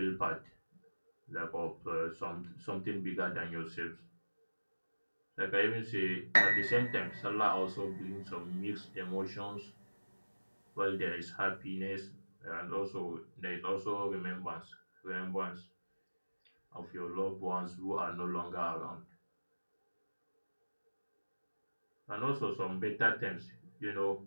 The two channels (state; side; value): inverted; both; correlation -1.00